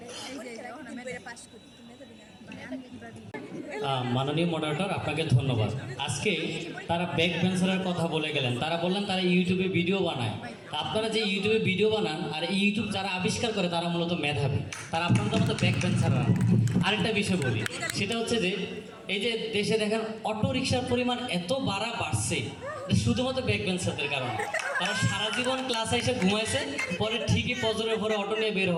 মাননীয় মডারেটর, আপনাকে ধন্যবাদ। আজকে তারা ব্যাক বেঞ্চারের কথা বলে গেলেন, তারা বললেন তারা ইউটিউবে ভিডিও বানায়। আপনারা যে ইউটিউবে ভিডিও বানান আর ইউটিউব যারা আবিষ্কার করে তারা মূলত মেধাবী, তারা আপনাদের মতো ব্যাক বেঞ্চাররা। আরেকটা বিষয় বলি, সেটা হচ্ছে যে এই যে দেশে দেখেন অটো রিক্সার পরিমাণ এত বাড়ছে শুধুমাত্র ব্যাক বেঞ্চারদের কারণে। তারা সারা জীবন ক্লাসে এসে ঘুমাইছে, পরে ঠিকই ফজরের পরে অটো নিয়ে বের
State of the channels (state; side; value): identical; both; correlation 1.00